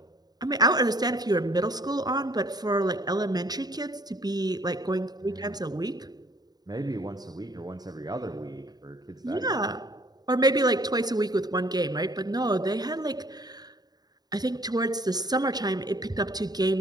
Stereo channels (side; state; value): left; late; 0.19 ms